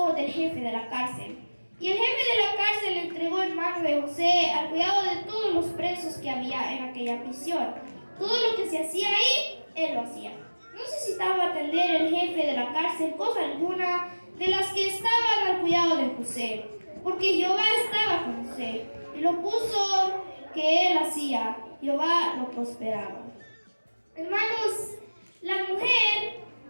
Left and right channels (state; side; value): inverted; both; correlation -1.00